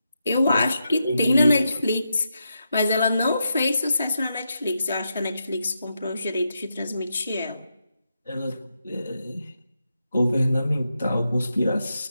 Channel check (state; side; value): inverted; both; correlation -0.85